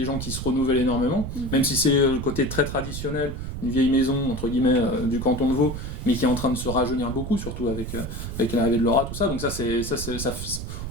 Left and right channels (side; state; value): right; noise; rumble, 7 dB below the sound